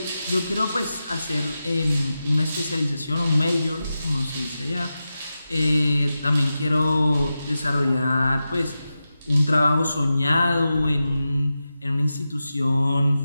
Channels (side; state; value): both; inverted; correlation -0.92